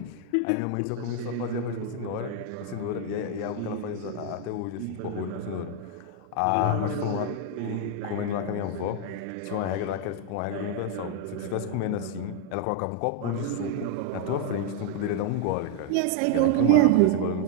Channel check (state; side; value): different; both; correlation 0.00